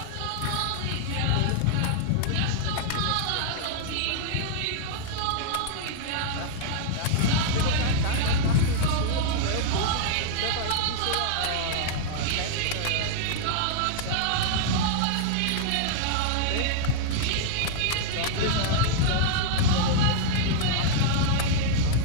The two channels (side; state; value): both; different; correlation -0.01